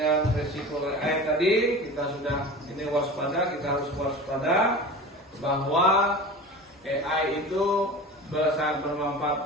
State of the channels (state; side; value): normal; both; correlation 0.34